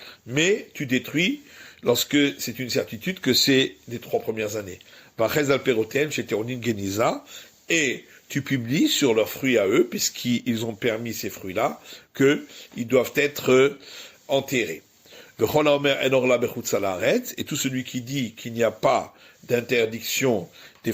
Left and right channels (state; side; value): identical; both; correlation 1.00